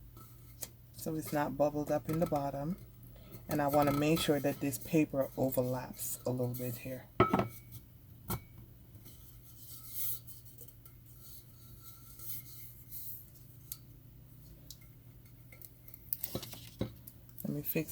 so it's not bubbled up in the bottom. And I want to make sure that this paper overlaps a little bit here. Let me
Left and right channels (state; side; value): identical; both; correlation 1.00